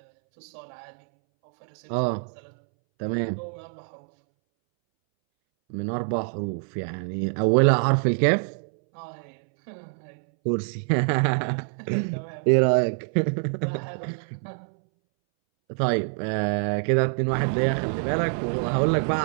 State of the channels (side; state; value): left; silent; 61 dB below the other